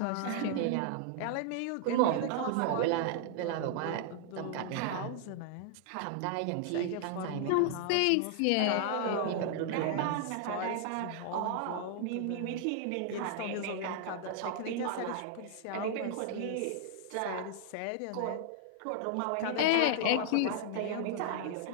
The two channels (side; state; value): both; different; correlation -0.01